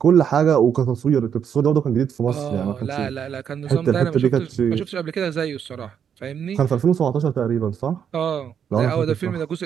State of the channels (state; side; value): quieter; left; 8.1 dB